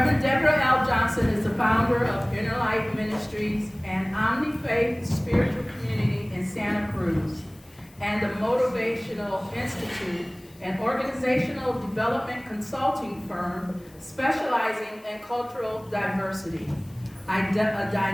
Deborah L. Johnson is the founder of Inner Life Ministries and Omni-Faith Spiritual Community in Santa Cruz, and the Motivational Institute, an organizational development consulting firm specializing in cultural diversity. A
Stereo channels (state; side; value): noise; left; hiss, 28 dB below the sound